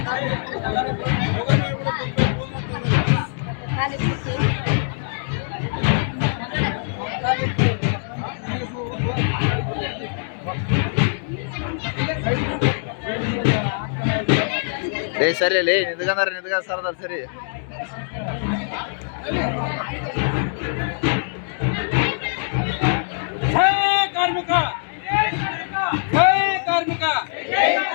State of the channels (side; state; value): right; silent; 64 dB below the other